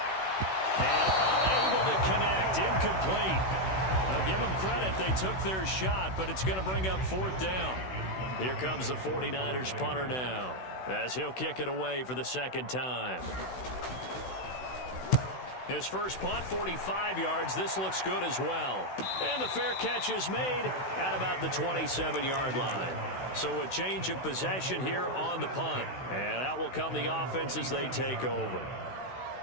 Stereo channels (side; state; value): right; late; 16 ms